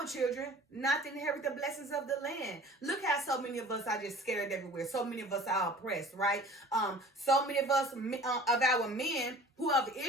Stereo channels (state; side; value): normal; both; correlation 0.46